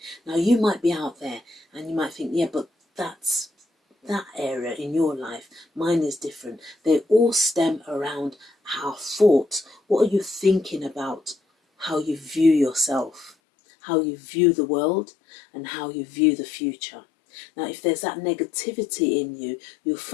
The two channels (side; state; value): right; drops out; at 13.4 s